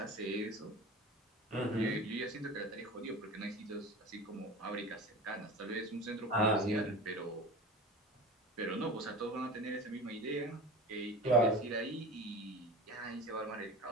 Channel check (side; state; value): both; normal; correlation 0.34